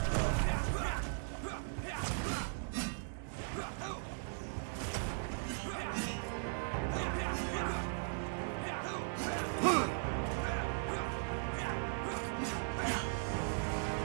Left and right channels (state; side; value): silent; left; 52 dB below the other